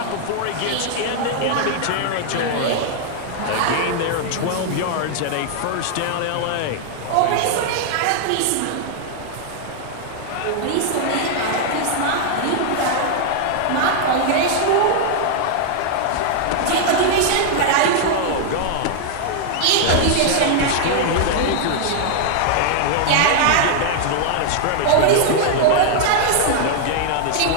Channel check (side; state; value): both; different; correlation 0.00